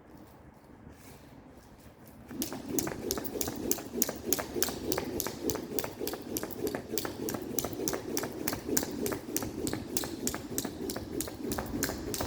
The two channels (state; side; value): identical; both; correlation 1.00